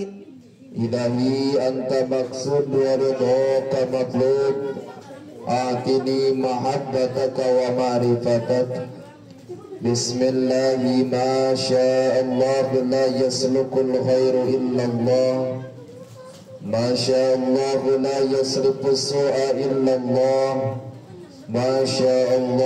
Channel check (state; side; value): identical; both; correlation 1.00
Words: Ilahi anta maksud wa ridhaka matlub, atini mahabbataka wa ma'rifatak. Bismillahi ma sya'allah la yaslukul khairu illallah, ma sya'allah la yasrifu su'a illallah, ma